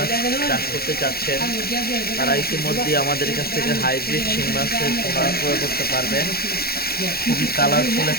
চাষ করতে চাচ্ছেন তারা ইতিমধ্যে আমাদের কাছ থেকে হাইব্রিড শিং মাছের পোনা ক্রয় করতে পারবেন। খুবই কালারফুল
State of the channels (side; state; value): right; late; 0.45 ms